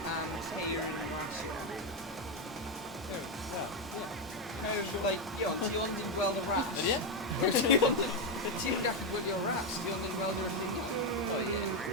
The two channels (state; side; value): normal; both; correlation 0.07